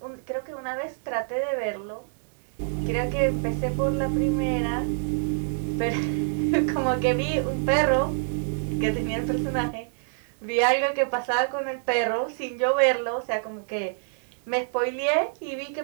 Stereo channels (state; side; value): silent; left; digital silence